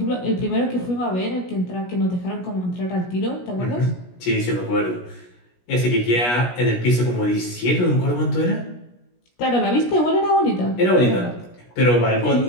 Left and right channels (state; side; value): late; right; 17 ms